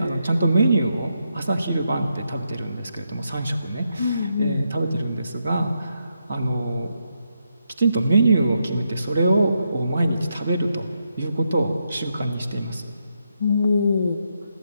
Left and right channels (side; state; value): both; inverted; correlation -0.82